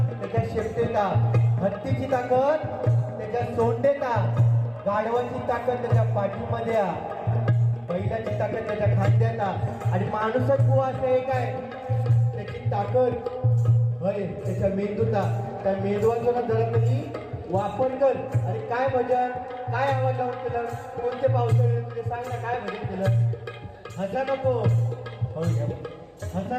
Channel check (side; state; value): both; identical; correlation 1.00